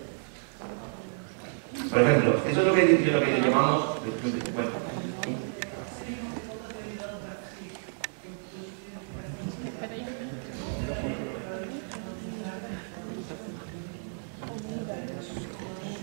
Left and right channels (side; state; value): left; silent; digital silence